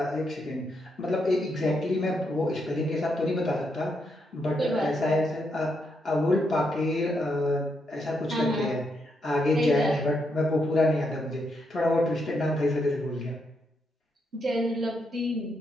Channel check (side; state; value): both; normal; correlation 0.80